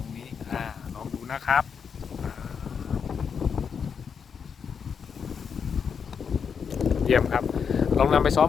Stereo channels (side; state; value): right; quieter; 6.6 dB